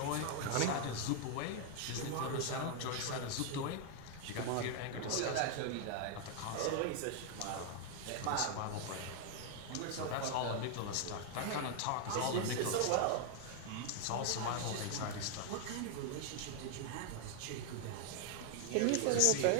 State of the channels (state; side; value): different; both; correlation 0.00